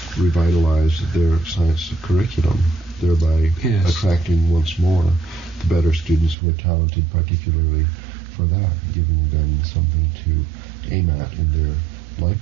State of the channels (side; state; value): left; drops out; at 6.4 s